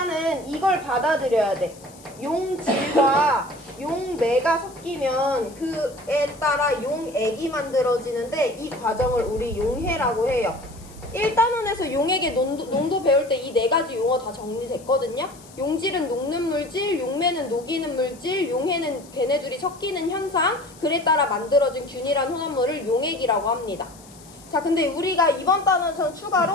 이걸 받아들여야 돼. 용질과 용매가 섞이면 그에 따라 용액이 만들어지는데 이 과정을 우리 용해라고 해요. 1단원에서 용액의 농도 배울 때 이 네 가지 용어 다 정리됐거든요. 용질은 녹는 물질, 용매는 녹이는 물질, 용해는 걔네들이 섞이는 현상, 그에 따라 만들어진 균일한 혼합물을 용액이라고 합니다. 자, 근데 우리가 이번 단원에서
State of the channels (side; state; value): left; noise; hiss, 23 dB below the sound